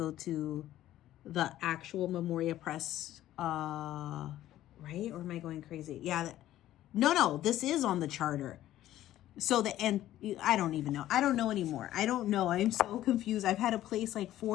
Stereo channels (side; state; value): right; quieter; 13.6 dB